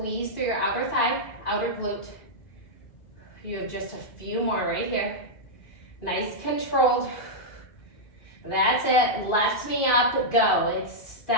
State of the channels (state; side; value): late; right; 2.5 ms